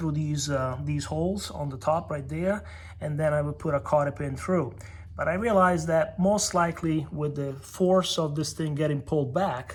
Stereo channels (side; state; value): both; identical; correlation 1.00